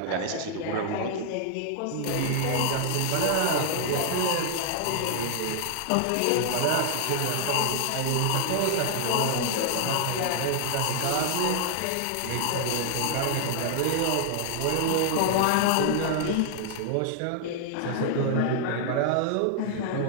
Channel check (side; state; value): both; different; correlation -0.01